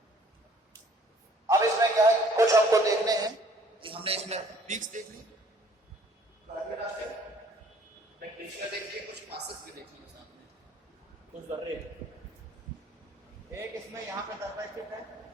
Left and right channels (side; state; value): both; normal; correlation 0.58